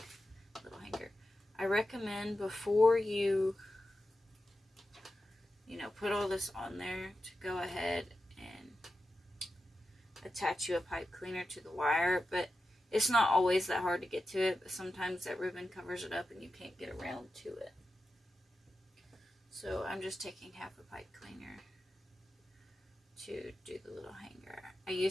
a little hanger. I recommend before you put all this on there to go ahead and attach you a pipe cleaner to the wire, but it's not always that hard to get to it, but sometimes that ribbon covers it up and you can't get around to it. So I'm just taking half a pipe cleaner to do the little hanger. I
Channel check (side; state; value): both; normal; correlation 0.91